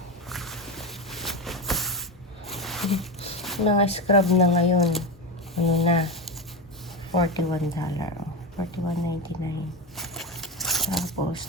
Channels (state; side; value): normal; both; correlation 0.17